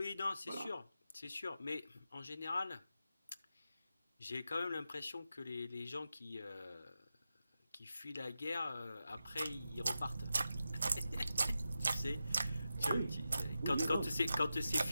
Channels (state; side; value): inverted; both; correlation -0.90